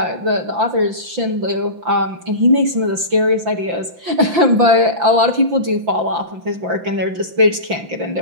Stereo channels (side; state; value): left; late; 5.9 ms